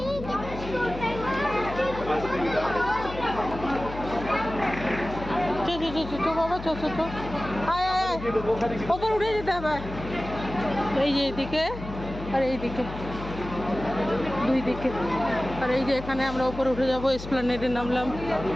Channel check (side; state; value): left; noise; hum, 10 dB below the sound